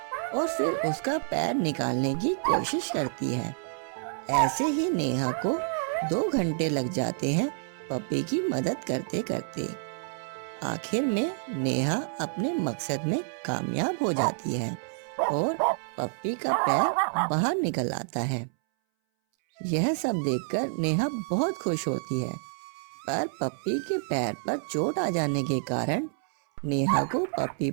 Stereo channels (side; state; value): left; silent; 59 dB below the other